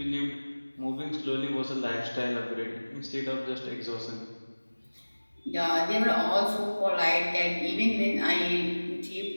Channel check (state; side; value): inverted; both; correlation -1.00